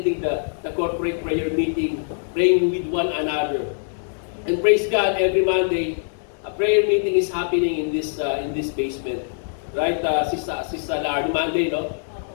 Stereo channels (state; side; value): silent; right; digital silence